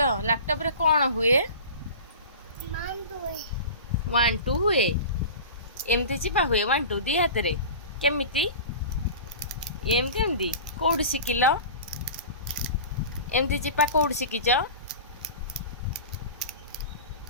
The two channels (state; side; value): inverted; both; correlation -0.34